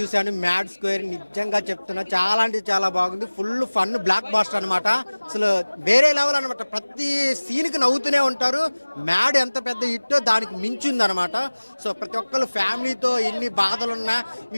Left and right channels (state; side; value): inverted; both; correlation -1.00